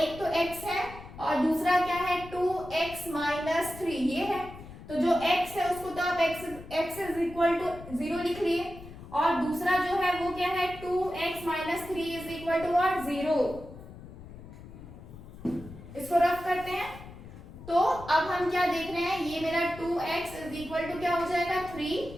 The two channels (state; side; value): noise; left; rumble, 15 dB below the sound